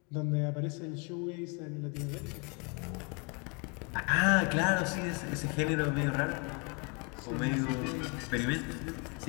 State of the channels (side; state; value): right; quieter; 33.1 dB